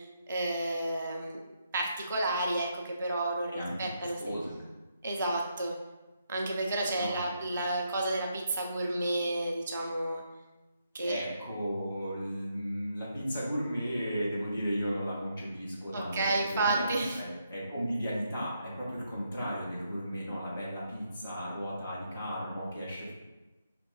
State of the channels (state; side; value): inverted; both; correlation -0.79